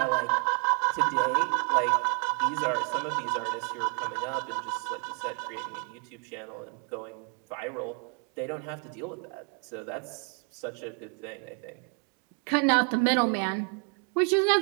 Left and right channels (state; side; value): quieter; left; 37.1 dB